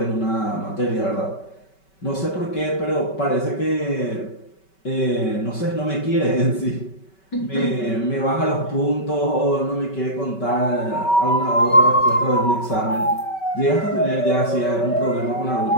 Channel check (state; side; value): late; right; 5.2 ms